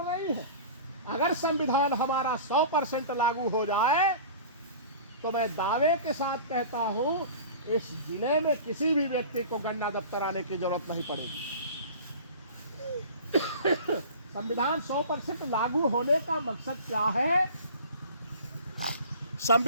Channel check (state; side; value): inverted; both; correlation -0.40